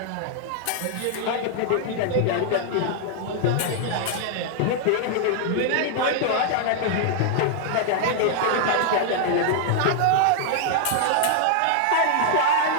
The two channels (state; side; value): different; both; correlation -0.01